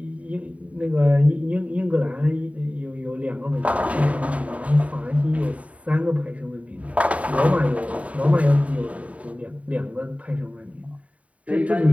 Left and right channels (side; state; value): left; late; 0.067 ms